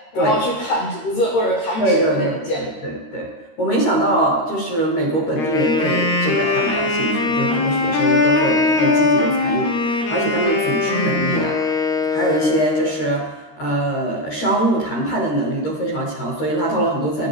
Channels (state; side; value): late; right; 13 ms